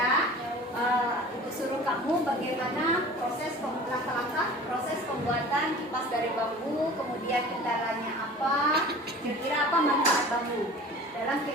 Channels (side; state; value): both; normal; correlation 0.41